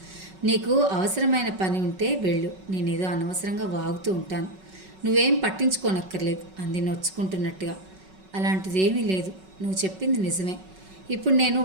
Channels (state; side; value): late; left; 5.3 ms